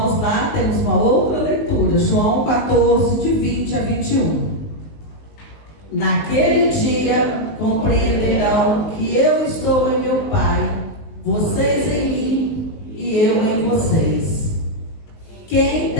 lá, temos uma outra leitura, João 14, de 20 a 21. Naquele dia compreenderão que eu estou em meu Pai, vocês em mim e eu em vocês. Quem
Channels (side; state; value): right; late; 19 ms